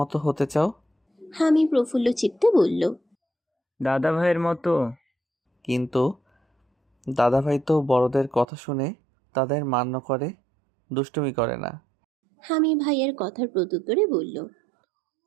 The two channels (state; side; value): drops out; left; at 8.5 s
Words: হতে চাও? হামি প্রফুল্ল চিত্তে বলল। দাদা ভাইয়ের মতো। কিন্তু দাদাভাই তো বড়দের কথা শুনে তাদের মান্য করে, দুষ্টুমি করে না। হামি ভাইয়ের কথার প্রত্যুত্তরে বলল।